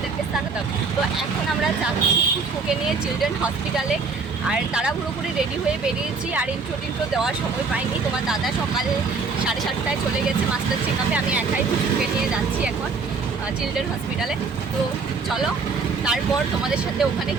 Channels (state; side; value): quieter; left; 4.6 dB